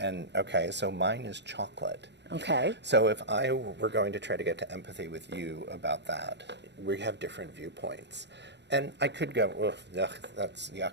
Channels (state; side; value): late; left; 0.51 ms